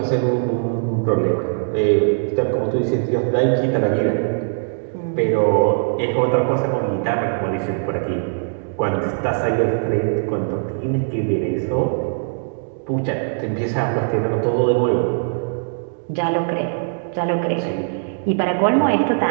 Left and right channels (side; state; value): left; silent; digital silence